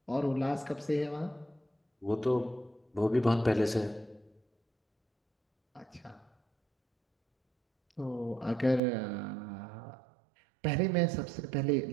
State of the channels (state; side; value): drops out; left; at 8.8 s